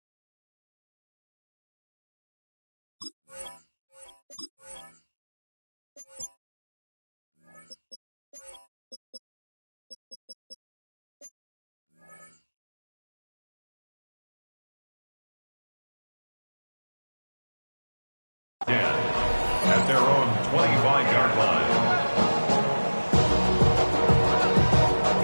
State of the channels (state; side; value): inverted; both; correlation -1.00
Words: At their own 25-yard line.